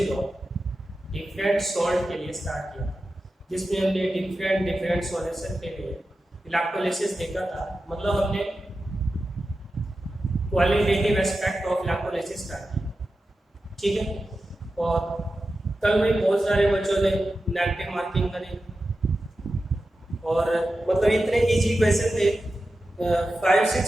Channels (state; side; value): normal; both; correlation 0.92